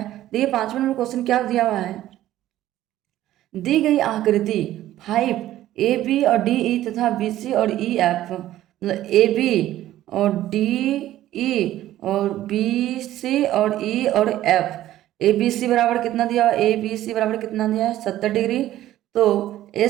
देखिए 5वां नंबर क्वेश्चन क्या दिया हुआ है। दी गई आकृति 5 ए बी और डी ई तथा बी सी और ई एफ, मतलब ए बी और डी ई और बी सी और ई और एफ, ए बी सी बराबर कितना दिया हुआ, ए बी सी बराबर कितना दिया है 70 डिग्री। तो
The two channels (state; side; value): quieter; left; 13.8 dB